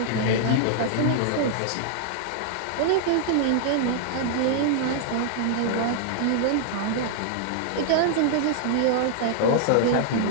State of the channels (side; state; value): both; different; correlation -0.01